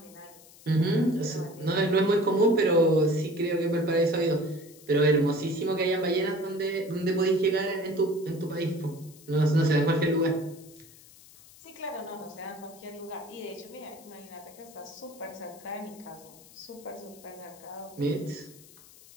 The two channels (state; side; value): noise; left; hiss, 22 dB below the sound